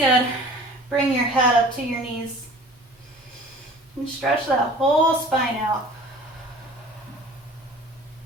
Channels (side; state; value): both; normal; correlation 0.46